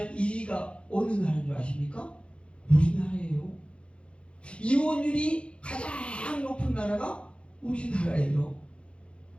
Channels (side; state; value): right; late; 0.058 ms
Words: 1위가 어느 나라인 줄 아십니까? 우리나라예요. 이혼율이 가장 높은 나라가 우리나라예요.